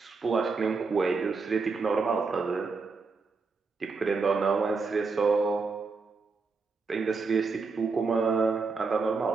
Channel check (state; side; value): quieter; left; 4.4 dB